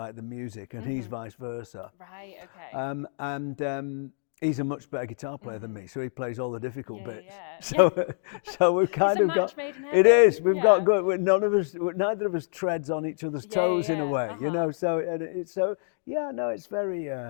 than music, and he's vice versa. Right, okay. And he's a much better guitar player than me, so he plays all the difficult bits. Yeah. So we've kind it's a of match got. Made in heaven. It is. We've got good. Neither of us treads on each other's toes in a way, you know. So it's very.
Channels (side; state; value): right; silent; digital silence